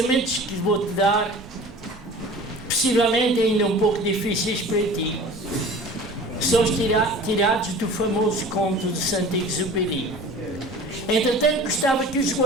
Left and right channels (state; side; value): normal; both; correlation 0.42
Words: que vou-te dar possivelmente ainda um pouco difíceis para ti, são tirados do famoso conto de Saint-Exupéry. Entretanto, gostava que os